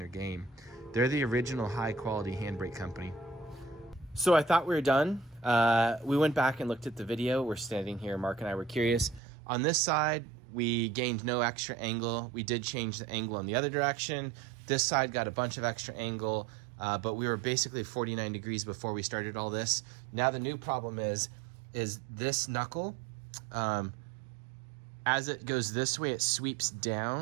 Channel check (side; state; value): left; drops out; at 9.2 s